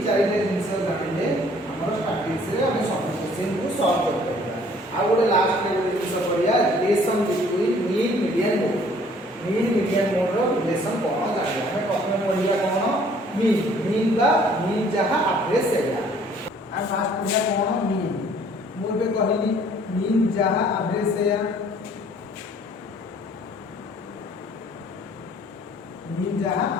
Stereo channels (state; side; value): normal; both; correlation 0.57